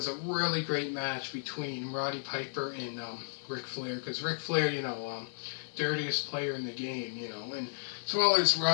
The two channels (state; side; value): silent; right; digital silence